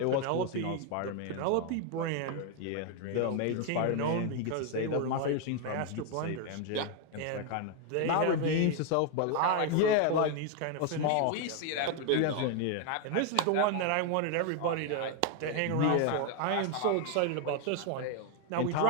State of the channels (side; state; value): both; different; correlation 0.01